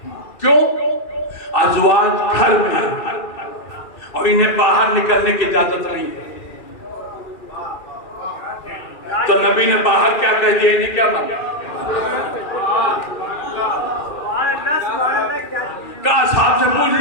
क्यों? अज़वाज घर में और इन्हें बाहर निकलने की इजाजत नहीं है। तो नबी ने बाहर क्या कह दिया, इन्हें क्या माना? का साहब से पूछ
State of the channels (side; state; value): right; late; 2.4 ms